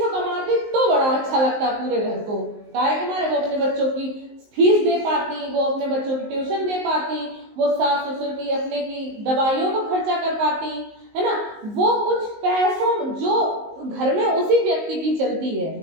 कमाती तो बड़ा अच्छा लगता पूरे घर को। काहे के मारे वो अपने बच्चों की फीस दे पाती, वो अपने बच्चों की ट्यूशन दे पाती, वो सास ससुर की अपने की दवाइयों को खर्चा कर पाती, है ना। वो कुछ पैसों जो घर में उसी व्यक्ति की चलती है।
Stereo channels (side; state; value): left; late; 19 ms